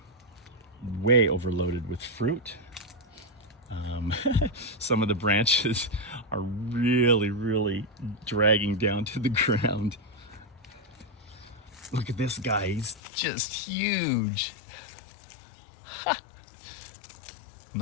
way overloaded with fruit. Some of the branches are really dragging down to the ground. Look at this guy, he's just huge. Ha.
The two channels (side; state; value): right; drops out; at 13.0 s